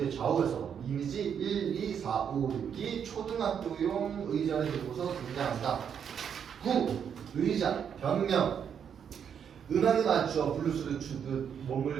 좌우에서 이미지 1, 2, 4, 5, 6이 초등학교용 의자를 들고서 등장한다. 9. 의자, 변명. 음악에 맞추어 블루스를 추듯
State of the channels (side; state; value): left; quieter; 7.9 dB